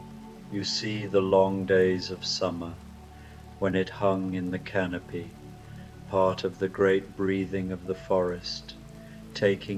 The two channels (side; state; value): both; identical; correlation 1.00